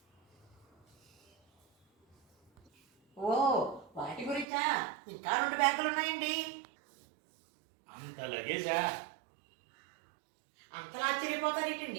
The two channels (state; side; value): drops out; left; at 4.5 s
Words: ఓ, వాటి గురించా? ఇంకా 2 బ్యాగులు ఉన్నాయండి. అంత లగేజా? అంతలా